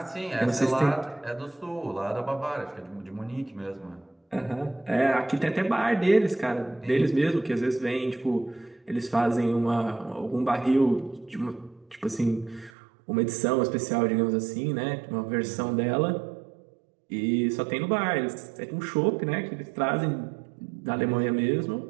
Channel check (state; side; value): drops out; left; at 12.7 s